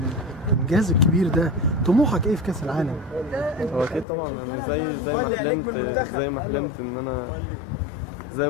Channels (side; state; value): right; drops out; at 4.0 s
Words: الكبير ده، طموحك ايه في كأس العالم؟ هو اكيد طبعا يعني زي ما